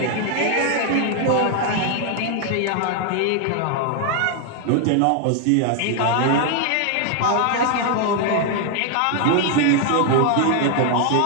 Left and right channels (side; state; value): both; different; correlation 0.00